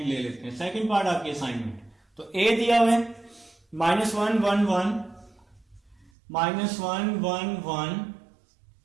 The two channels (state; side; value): drops out; left; at 6.1 s